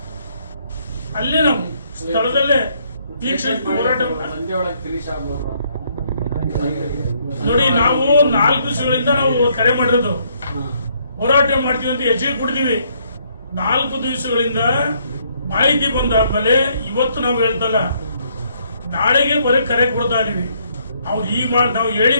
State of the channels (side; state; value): both; inverted; correlation -0.69